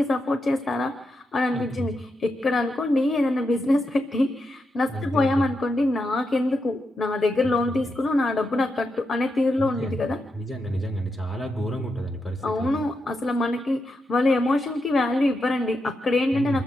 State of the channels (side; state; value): both; normal; correlation 0.85